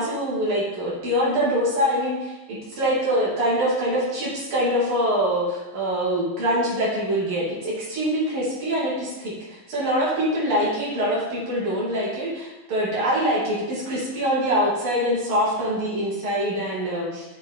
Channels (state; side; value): late; left; 11 ms